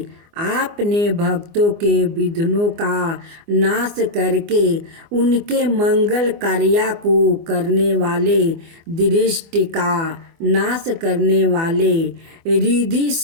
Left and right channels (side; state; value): left; late; 24 ms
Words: आपने भक्तों के विघ्नों का नाश करके उनके मंगल कार्य को करने वाले, दृष्टि का नाश करने वाले, रिद्धि